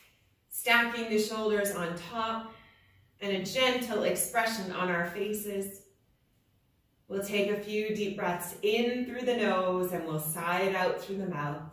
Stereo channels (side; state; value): both; identical; correlation 1.00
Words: Stacking the shoulders on top. And a gentle expression on our faces. We'll take a few deep breaths in through the nose and we'll sigh it out through the mouth.